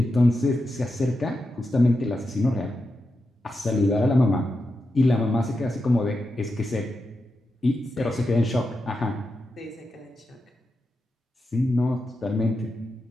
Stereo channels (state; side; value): normal; both; correlation 0.88